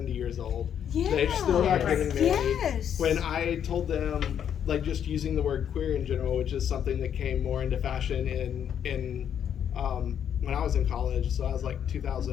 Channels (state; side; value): quieter; right; 9.0 dB